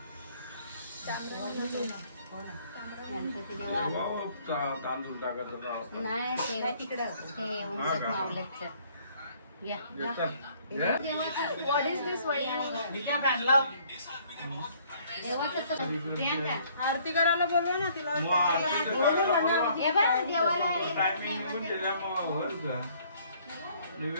तांदूळ टाकायचं नाही तिकडं आरती करायला बोलवा ना तिला. टायमिंग निघून गेल्या मग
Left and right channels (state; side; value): inverted; both; correlation -0.61